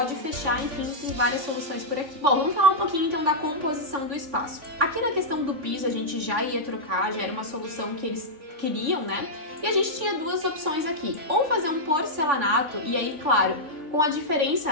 fechar, enfim, tem várias soluções por aqui. Bom, vamos falar um pouquinho então da composição do espaço. Aqui na questão do piso a gente já ia trocar, já era uma solução que eles queriam, né? E a gente tinha duas opções aqui, ou fazer um porcelanato, e aí, claro, com a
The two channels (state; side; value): late; left; 3.5 ms